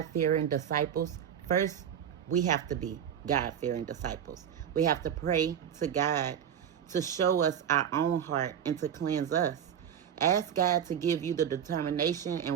disciples, first, we have to be God-fearing disciples. We have to pray to God to show us our own heart and to cleanse us. Ask God to give you the determination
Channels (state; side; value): quieter; left; 8.9 dB